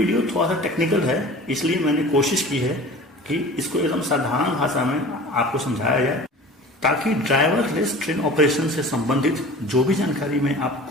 थोड़ा सा टेक्निकल है, इसलिए मैंने कोशिश की है कि इसको एकदम साधारण भाषा में आपको समझाया जाए, ताकि ड्राइवरलेस ट्रेन ऑपरेशन से संबंधित जो भी जानकारी मैं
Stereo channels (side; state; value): both; normal; correlation 0.40